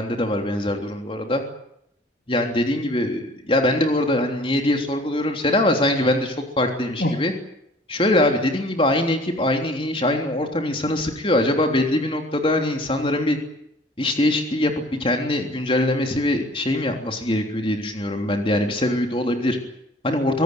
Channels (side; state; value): both; normal; correlation 0.51